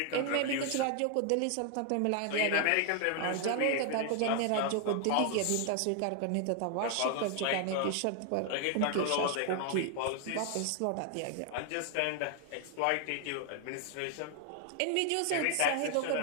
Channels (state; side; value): different; both; correlation 0.00